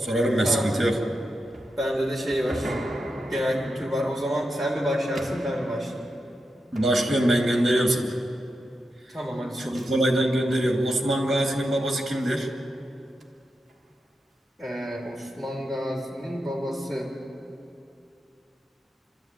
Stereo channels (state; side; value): normal; both; correlation 0.87